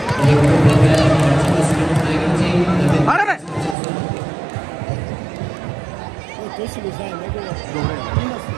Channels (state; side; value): drops out; left; at 3.8 s